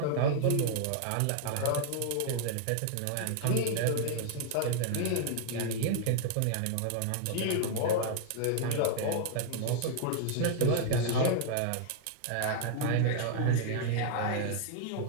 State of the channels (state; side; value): different; both; correlation 0.00